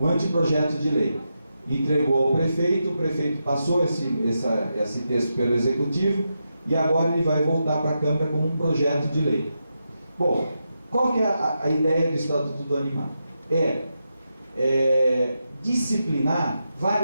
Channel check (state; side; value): inverted; both; correlation -0.86